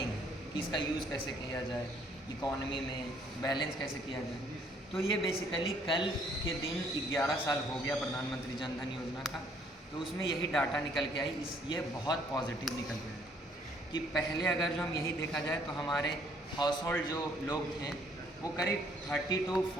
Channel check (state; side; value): normal; both; correlation 0.64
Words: है कि इसका यूज़ कैसे किया जाए, इकॉनमी में बैलेंस कैसे किया जाए। तो ये बेसिकली कल के दिन 11 साल हो गया प्रधानमंत्री जन धन योजना का, तो उसमें यही डाटा निकल के आई। ये बहुत पॉजिटिव निकल के आई कि पहले अगर जो हम यही देखा जाए तो हमारे हाउस होल्ड जो लोग थे वो करीब 30 to